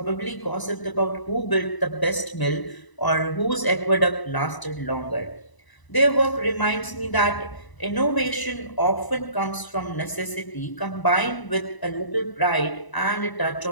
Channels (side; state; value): right; late; 1.0 ms